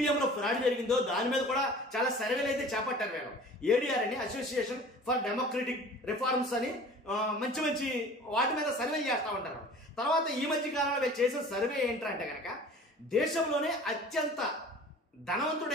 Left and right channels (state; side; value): normal; both; correlation 0.44